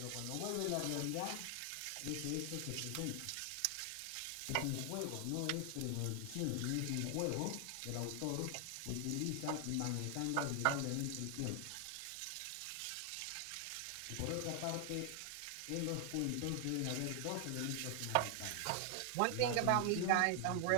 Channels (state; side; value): different; both; correlation 0.00